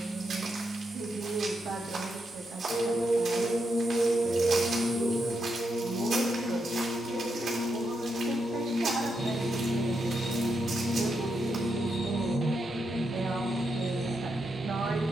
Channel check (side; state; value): both; normal; correlation 0.83